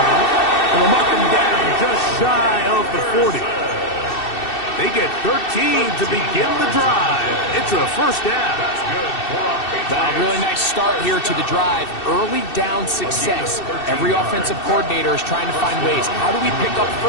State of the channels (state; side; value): late; right; 2.6 ms